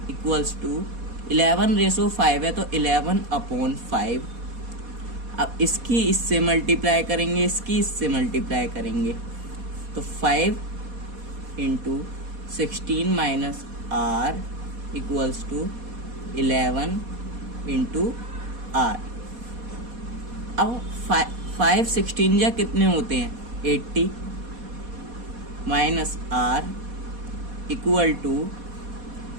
इक्वल्स टू 11/5 है तो 11/5। अब इसकी इससे मल्टीप्लाई करेंगे, इसकी इससे मल्टीप्लाई करेंगे, तो 5 into 16 minus r equals to 11 into r। अब 5 16 जा कितने होते हैं, 80 माइनस r इक्वल टू,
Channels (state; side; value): late; left; 4.2 ms